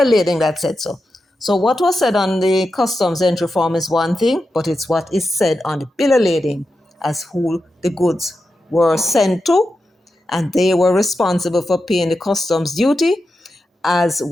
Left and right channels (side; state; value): both; normal; correlation 0.89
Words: lading that said so. So what was said on the customs entry form is one thing, but it's what is said on the bill of lading as who the goods were sent to, and they were responsible for paying the customs duty as